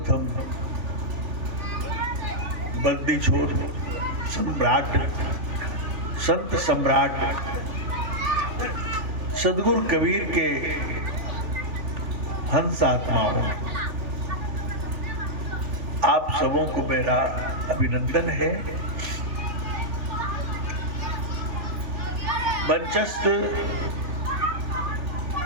बंदी छोड़ सम्राट संत सम्राट सदगुरु कबीर के हंस आत्माओं, आप सबों को मेरा अभिनंदन है। मंचस्थ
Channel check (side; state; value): left; late; 3.4 ms